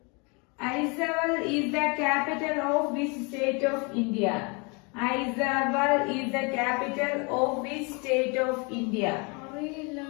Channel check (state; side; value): quieter; right; 31.3 dB